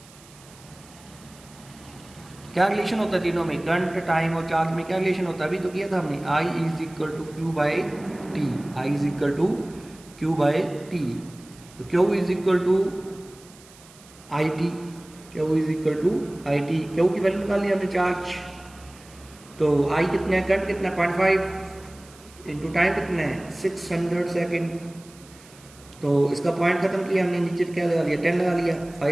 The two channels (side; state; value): right; noise; hiss, 23 dB below the sound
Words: क्या रिलेशन होता है तीनों में, करंट टाइम और चार्ज में क्या रिलेशन होता है, अभी तो किया था हमने। I is equal to Q by T, I is equal to Q by T. तो Q is equal to I T, Q is equal to I T. Q की वैल्यू निकाल लिया हमने चार्ज। तो आई कितना है, करंट कितना 0.5 इंटू टाइम कितना है 600 सेकेंड। तो इसका पॉइंट खत्म किया हमने, नीचे क्या लगा लिया 10 लगा लिया।